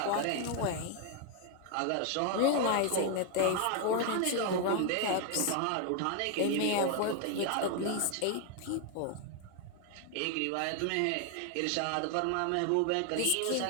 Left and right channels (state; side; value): different; both; correlation 0.00